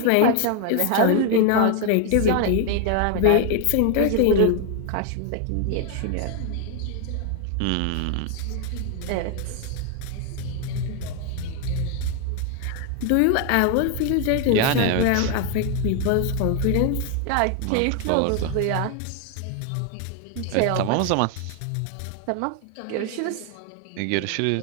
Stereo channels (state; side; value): different; both; correlation 0.00